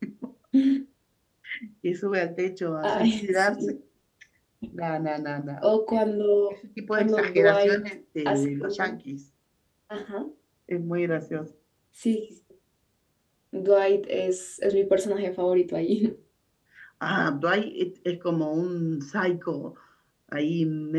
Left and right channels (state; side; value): identical; both; correlation 1.00